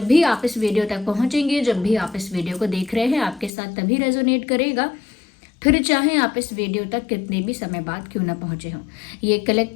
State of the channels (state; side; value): drops out; right; at 3.5 s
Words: भी आप इस वीडियो तक पहुंचेंगे, जब भी आप इस वीडियो को देख रहे हैं, आपके साथ तभी रेजोनेट करेगा, फिर चाहे आप इस वीडियो तक कितने भी समय बाद क्यों ना पहुंचे हों। ये